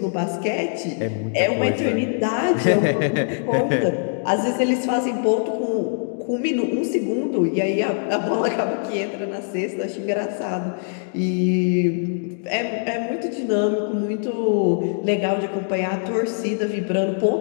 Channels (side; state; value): right; silent; digital silence